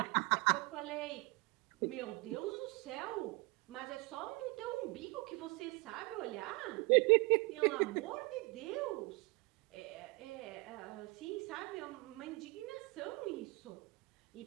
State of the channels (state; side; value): quieter; left; 25.6 dB